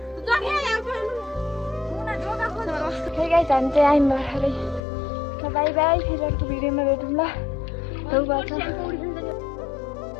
हे गाइस हामी चाहिँ आयौँ भर्खरै बाई बाई फेरि अर्को भिडियोमा भेटौँ ल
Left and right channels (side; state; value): right; drops out; at 4.8 s